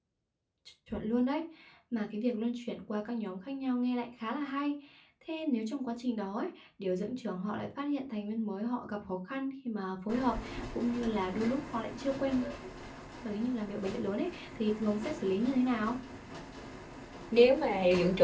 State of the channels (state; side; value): identical; both; correlation 1.00